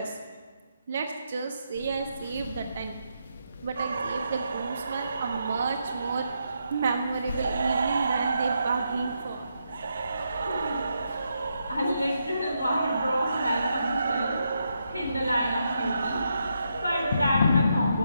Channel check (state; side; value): inverted; both; correlation -0.81